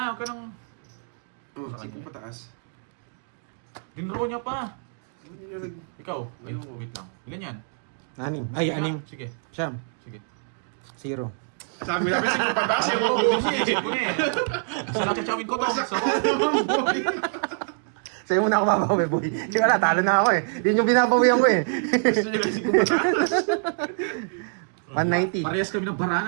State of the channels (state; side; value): silent; left; digital silence